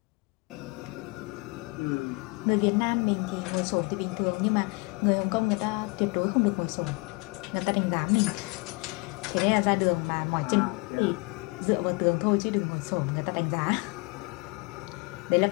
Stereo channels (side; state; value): right; quieter; 27.4 dB